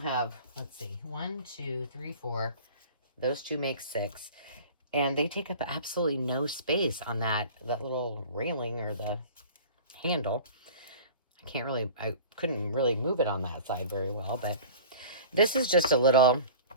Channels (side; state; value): both; inverted; correlation -0.41